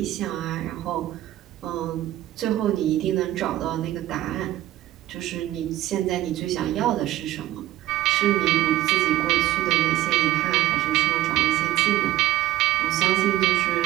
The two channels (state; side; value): quieter; left; 14.9 dB